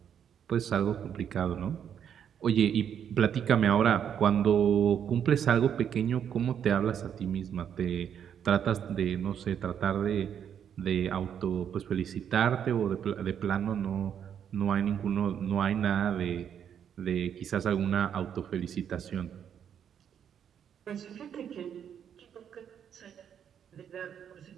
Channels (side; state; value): left; quieter; 8.6 dB